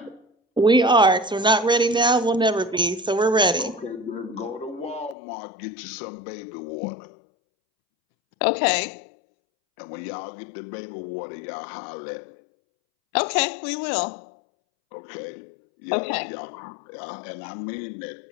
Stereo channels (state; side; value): drops out; right; at 5.2 s